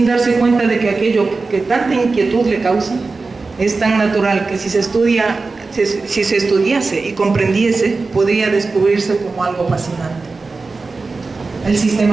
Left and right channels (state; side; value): quieter; left; 3.9 dB